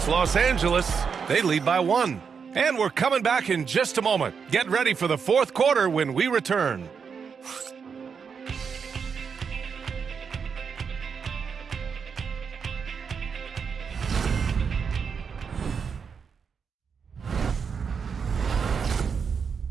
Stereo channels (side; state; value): left; quieter; 6.2 dB